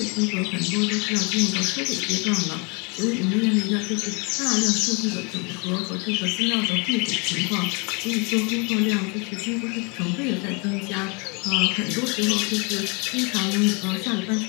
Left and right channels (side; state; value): right; quieter; 31.9 dB